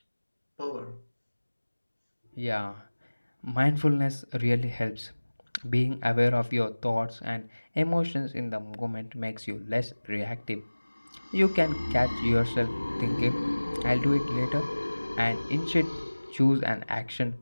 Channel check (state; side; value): inverted; both; correlation -1.00